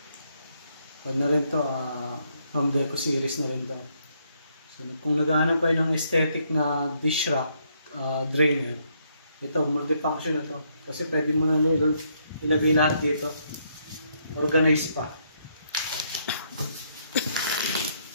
kung na rin to, home deco series na rin to. So kung naghahanap kayo ng aesthetic na dish rack drainer, ito, multifunction na to. Kasi pwede mo na ilagay lahat dito. Organized pa.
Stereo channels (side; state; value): both; inverted; correlation -0.73